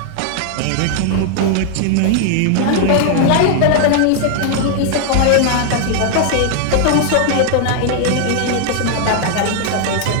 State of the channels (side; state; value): both; different; correlation 0.00